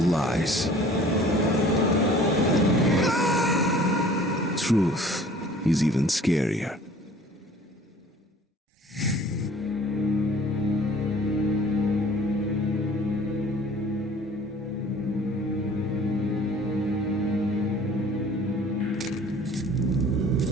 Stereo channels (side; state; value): both; normal; correlation 0.50